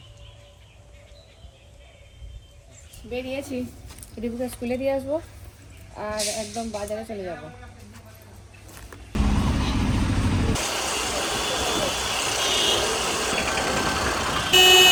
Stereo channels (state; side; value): identical; both; correlation 1.00